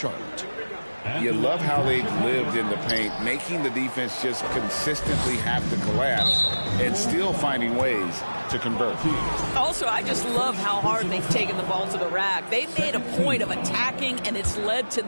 You love how they've lived in the paint, making the defense just consistently have to collapse and still finding ways to convert. Also, I just love how hard they've taken the ball to the rack. They've made a point of attacking, and it's led to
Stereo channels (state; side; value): inverted; both; correlation -1.00